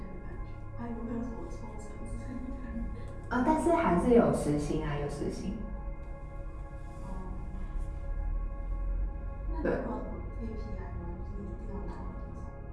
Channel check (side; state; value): both; identical; correlation 1.00